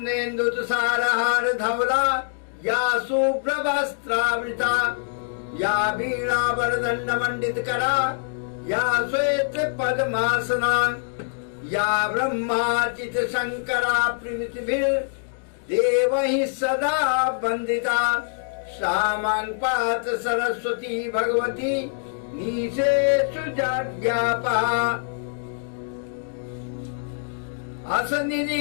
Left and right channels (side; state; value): right; silent; digital silence